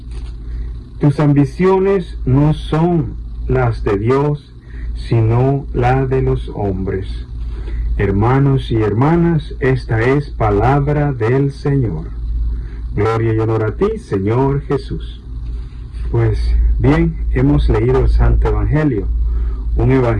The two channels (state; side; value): identical; both; correlation 1.00